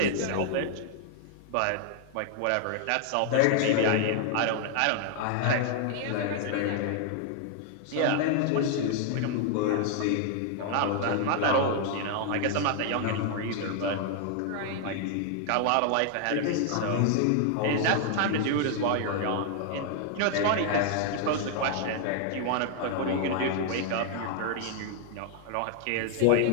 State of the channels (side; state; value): both; different; correlation 0.00